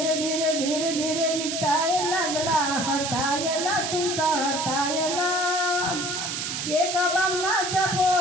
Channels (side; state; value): right; noise; hiss, 3 dB below the sound